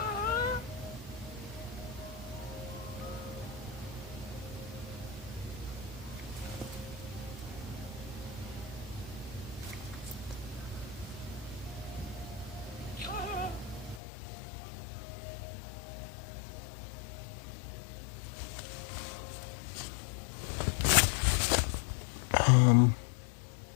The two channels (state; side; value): drops out; right; at 14.0 s